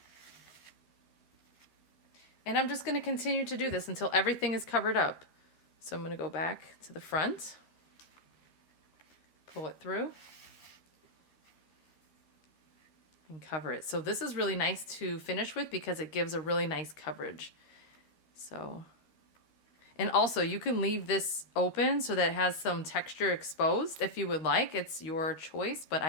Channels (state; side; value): late; right; 13 ms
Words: And I'm just going to continue to do this until everything is covered up. So I'm going to go back to the front, pull it through, and cover it. So this is really nice to finish with because it gives a really nice coverage. So, and also you can leave this open so that it has some texture exposed if you would like. It's your choice, but